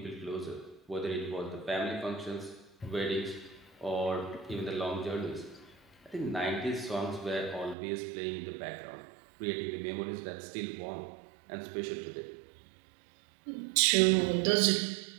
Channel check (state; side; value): drops out; left; at 7.8 s